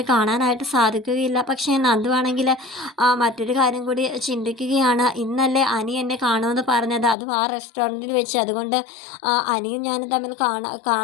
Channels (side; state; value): right; drops out; at 7.2 s